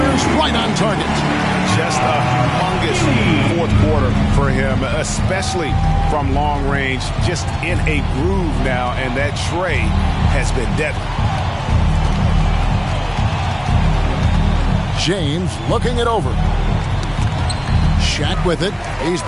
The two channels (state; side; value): identical; both; correlation 1.00